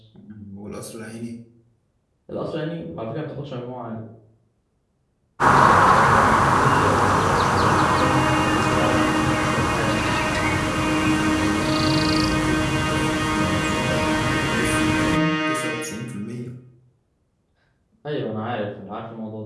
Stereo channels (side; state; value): both; identical; correlation 1.00